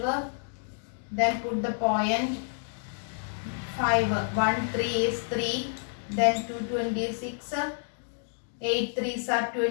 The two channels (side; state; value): right; silent; digital silence